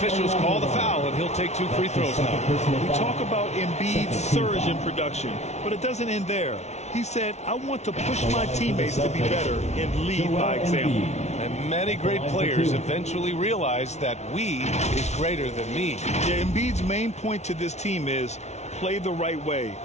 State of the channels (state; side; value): late; right; 0.32 ms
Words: call the foul, and he'll take 2 free throws now. We talk about Embiid's surge in production, but it doesn't end there. He said, I want to push my teammates to be better and lead by example. And many great players eventually realize that we is greater than me. Yeah, Embiid's main point to this team is play the right way,